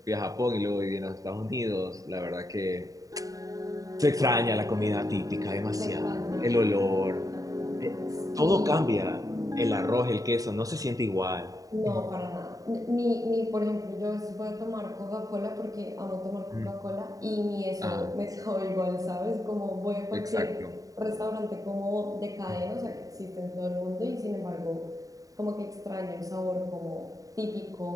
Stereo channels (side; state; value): left; late; 0.17 ms